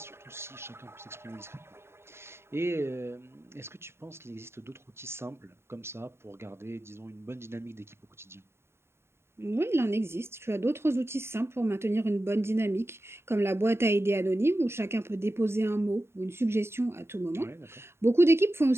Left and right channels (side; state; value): left; late; 0.12 ms